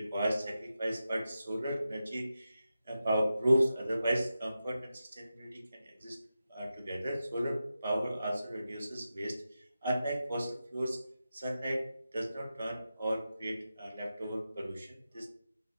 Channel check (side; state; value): both; inverted; correlation -0.91